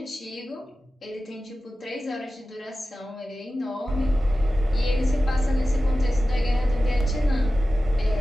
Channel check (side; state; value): both; normal; correlation 0.94